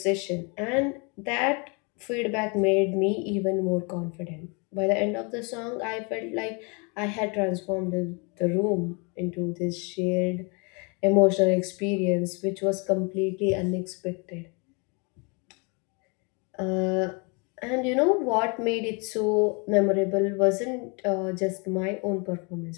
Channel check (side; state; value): right; quieter; 32.5 dB